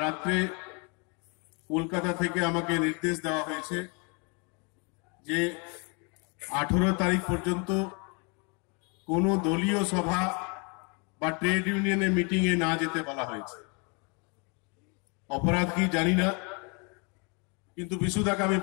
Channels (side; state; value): right; quieter; 33.4 dB